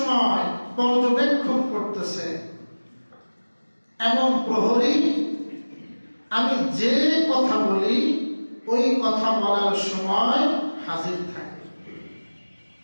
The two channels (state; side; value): inverted; both; correlation -1.00